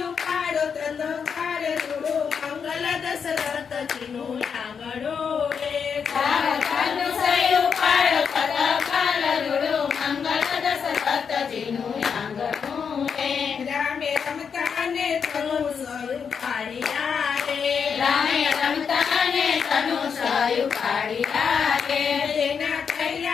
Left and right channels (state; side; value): quieter; right; 6.5 dB